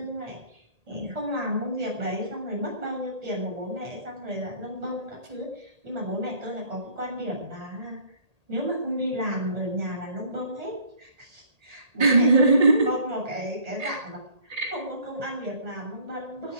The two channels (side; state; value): left; late; 1.8 ms